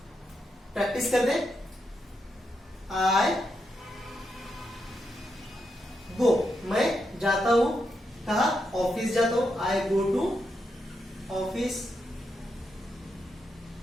प्रैक्टिस कर दें। आई गो, मैं जाता हूं, कहा? ऑफिस जाता हूं, आई गो टू ऑफिस,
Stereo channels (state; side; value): normal; both; correlation 0.83